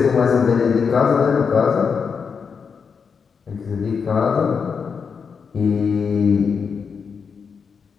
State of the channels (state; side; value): quieter; right; 6.0 dB